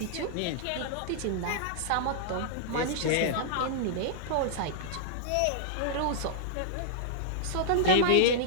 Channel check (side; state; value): both; different; correlation -0.02